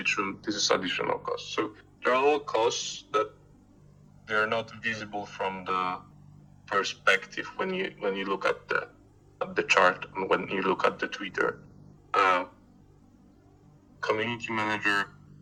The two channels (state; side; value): identical; both; correlation 1.00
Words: this is additional cost. So they're all costs that they're not visible from the perspective when you look at the chart and when you look at the Twitter. Community manager,